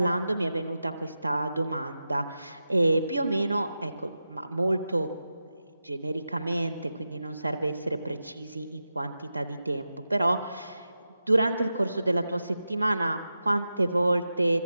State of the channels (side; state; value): both; inverted; correlation -0.91